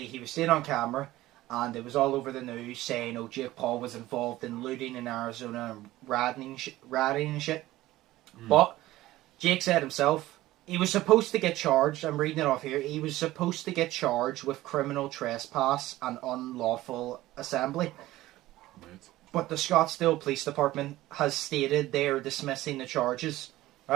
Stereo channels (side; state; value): left; quieter; 16.5 dB